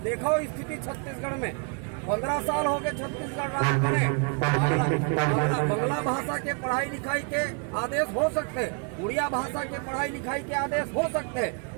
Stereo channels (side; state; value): left; quieter; 37.4 dB